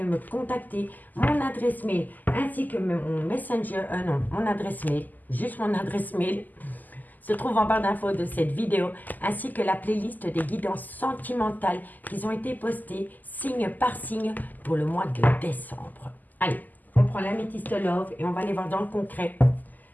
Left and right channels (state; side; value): late; right; 0.084 ms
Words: me contacter. Mon adresse mail ainsi que mon messenger, mon adresse mail, juste mon adresse mail, se trouve en barre d'infos de cette vidéo, ainsi que la playlist des guidances sentimentales qui ont été postées signe par signe pour le mois de décembre. Allez, on prend l'améthyste love et on va aller voir dans le concret